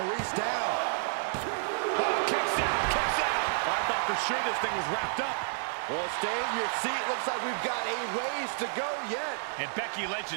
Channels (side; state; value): left; silent; digital silence